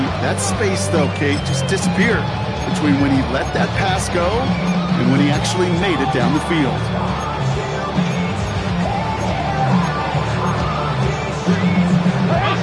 That space, though, Kate, just disappeared between when he let that pass go and when he actually made it down the field.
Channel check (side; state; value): both; identical; correlation 1.00